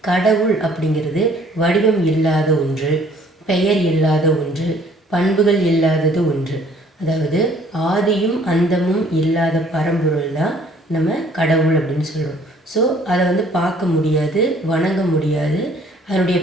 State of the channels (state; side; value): normal; both; correlation 0.58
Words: கடவுள் அப்படிங்கிறது வடிவம் இல்லாத ஒன்று, பெயர் இல்லாத ஒன்று, பண்புகள் இல்லாதது ஒன்று. அதாவது ஆதியும் அந்தமும் இல்லாத பரம்பொருள் தான் நம்ம கடவுள் அப்படின்னு சொல்கிறோம். ஸோ அதை பார்க்க முடியாது, வணங்க முடியாது, அதனுடைய